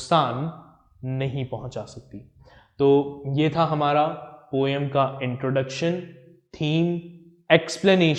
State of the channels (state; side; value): identical; both; correlation 1.00